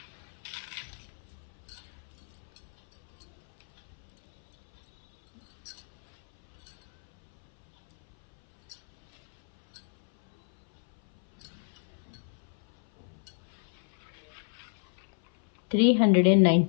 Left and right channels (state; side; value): silent; right; 57 dB below the other